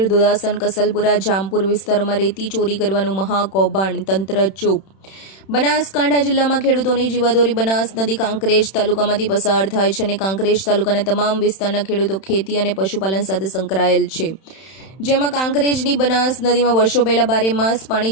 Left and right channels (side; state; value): right; late; 31 ms